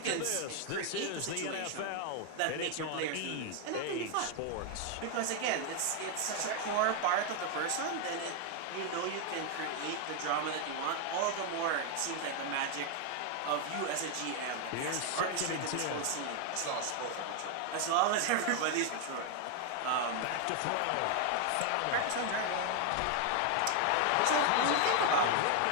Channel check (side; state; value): both; different; correlation 0.01